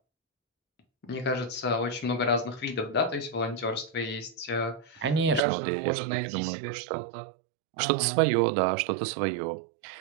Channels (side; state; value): left; drops out; at 5.4 s